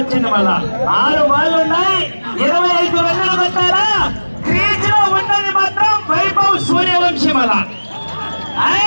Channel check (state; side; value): inverted; both; correlation -1.00